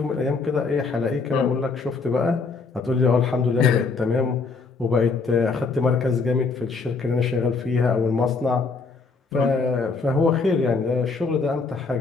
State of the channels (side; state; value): right; quieter; 4.4 dB